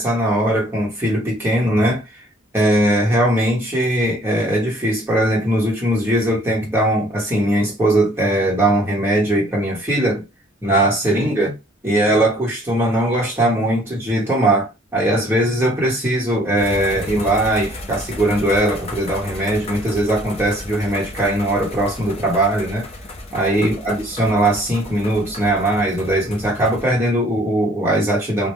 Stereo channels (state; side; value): normal; both; correlation 0.58